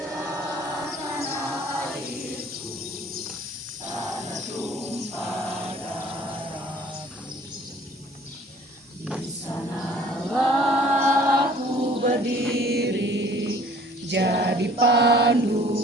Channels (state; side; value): normal; both; correlation 0.53